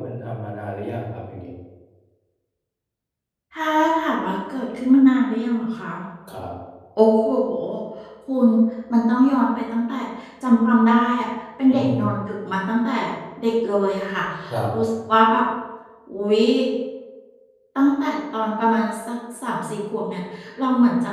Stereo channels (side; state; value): both; identical; correlation 1.00